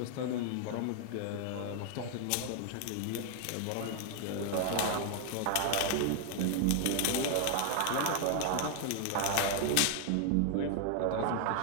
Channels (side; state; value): both; different; correlation 0.00